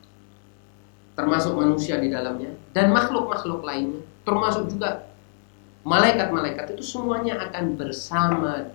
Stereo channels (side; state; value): right; silent; digital silence